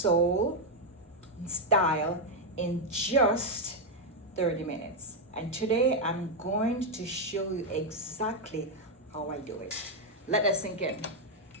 style in just 30 minutes. And today I'm going to show you exactly how I do it. Let that sink in.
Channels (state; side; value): normal; both; correlation 0.01